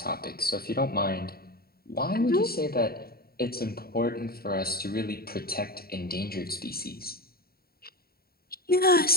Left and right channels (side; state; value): right; late; 0.44 ms